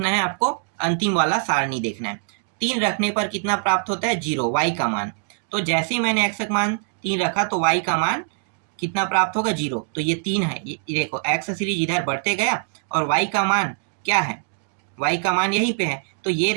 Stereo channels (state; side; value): silent; left; 63 dB below the other